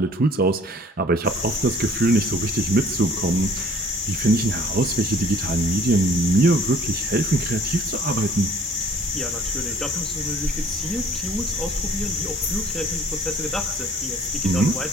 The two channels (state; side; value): normal; both; correlation 0.54